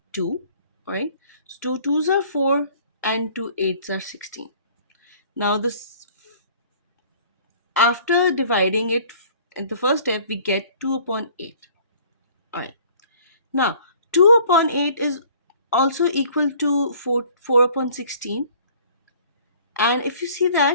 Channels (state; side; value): inverted; both; correlation -0.52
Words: 2, right? So 2 2s are 4 and 2 8s are 16. Now, this, after dividing it in the first step, we get 2 upon 8. All right. Now, 2 upon 8 is also equal to 4 upon 16. And if you see